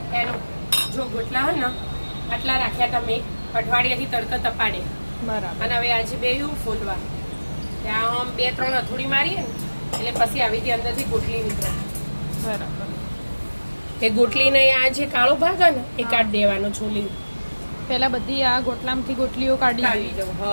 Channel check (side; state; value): both; inverted; correlation -1.00